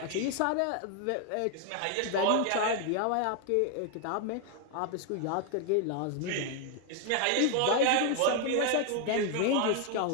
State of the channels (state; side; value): different; both; correlation 0.00